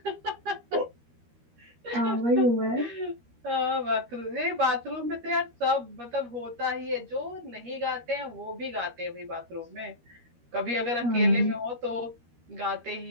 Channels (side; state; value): left; late; 13 ms